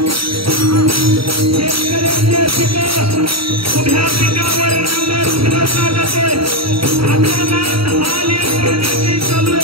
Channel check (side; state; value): left; late; 0.75 ms